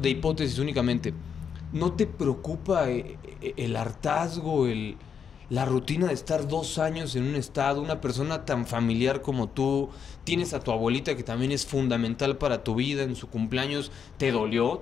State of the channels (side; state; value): right; quieter; 7.1 dB